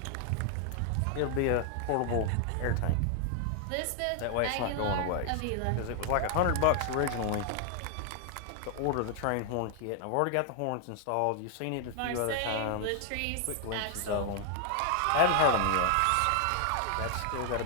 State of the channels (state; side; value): different; both; correlation 0.00